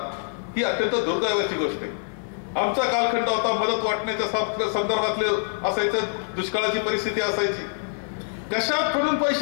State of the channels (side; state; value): right; silent; digital silence